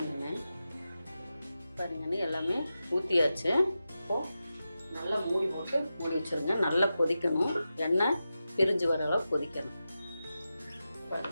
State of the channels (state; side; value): inverted; both; correlation -0.91